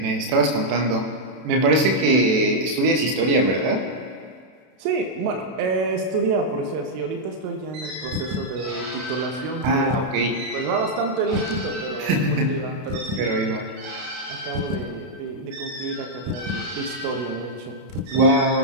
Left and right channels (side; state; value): left; late; 32 ms